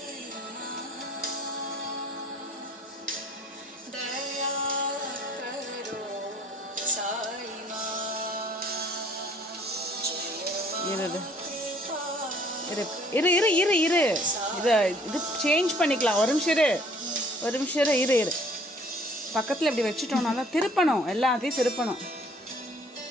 இரு இது சேஞ்ச் பண்ணிக்கலாம். ஒரு நிமிஷம் இரு. பக்கத்தில் இப்படி வச்சுட்டோம்னா தான் திருப்பணும், எல்லாத்தையும் திருப்பணும்.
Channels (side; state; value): both; normal; correlation 0.58